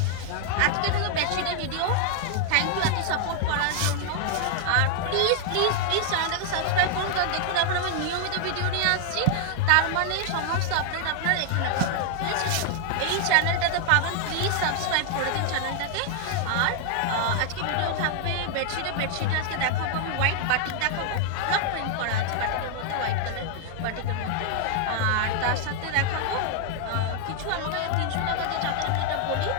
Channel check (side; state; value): both; different; correlation 0.00